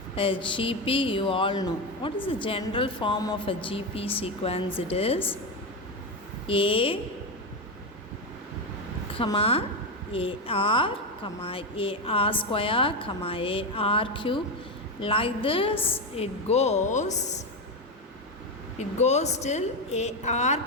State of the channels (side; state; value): both; normal; correlation 0.12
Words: a GP, you all know. What is the general form of a GP sequence? It is A, AR, AR square, AR cube. Like this it goes till AR